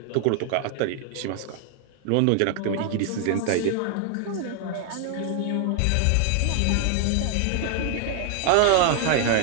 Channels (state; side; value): different; both; correlation 0.00